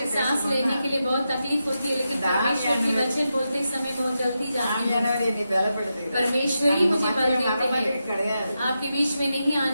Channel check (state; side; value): inverted; both; correlation -0.88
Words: मुझे सांस लेने के लिए बहुत तकलीफ होती है, लेकिन परमेश्वर की वचन बोलते समय बहुत जल्दी जाती है. ஆவியானவர் என்னை பலப்படுத்துகிறார். परमेश्वर ही मुझे बल நம்ம देते மத்தியில हैं. கிடையாது. आपके बीच में नहीं